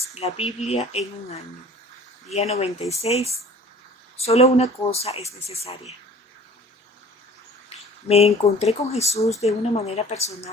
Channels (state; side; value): normal; both; correlation 0.47